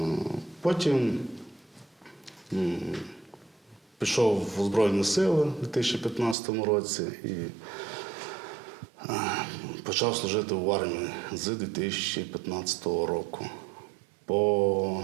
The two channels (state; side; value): drops out; left; at 6.4 s